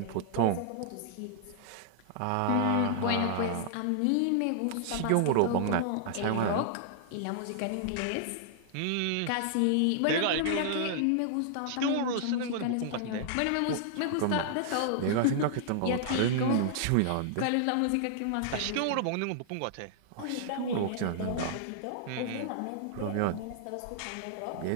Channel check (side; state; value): both; different; correlation -0.01